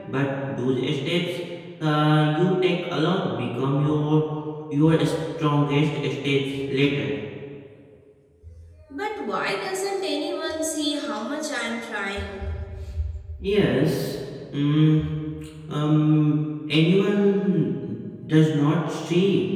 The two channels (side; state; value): both; identical; correlation 1.00